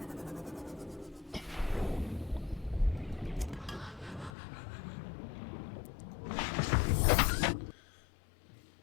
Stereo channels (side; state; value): right; drops out; at 4.3 s